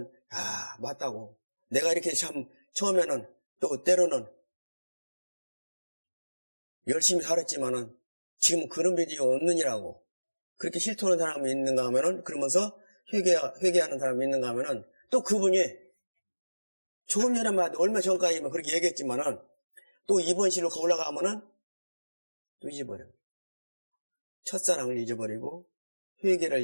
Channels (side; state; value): both; inverted; correlation -1.00